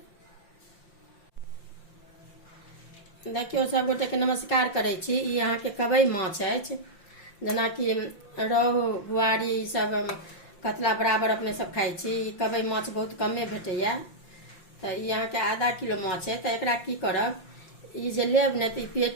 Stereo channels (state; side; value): late; right; 5.7 ms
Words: देखियो सब गोटे के नमस्कार करे छी। ई अहाँ के कबै माछ अछि, जेना कि रोहु बुआरी ई सब कतला बराबर अपने सब खाई छी। कबै माछ बहुत कमे भेटैया, तो ये अहाँ के आधा किलो माछ है। तो एकरा की करब, ई जे लेब ने तो